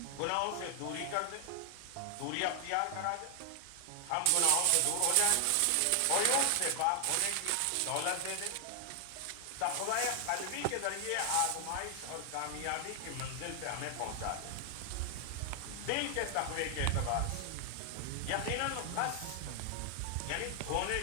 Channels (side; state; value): both; different; correlation 0.00